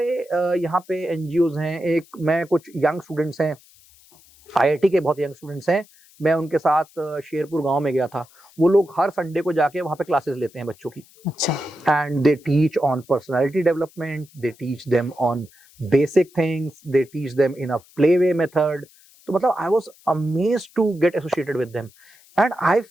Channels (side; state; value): left; noise; hiss, 27 dB below the sound